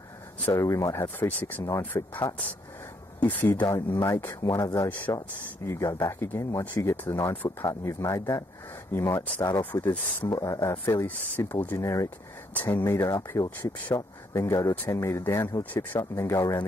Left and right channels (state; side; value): normal; both; correlation 0.72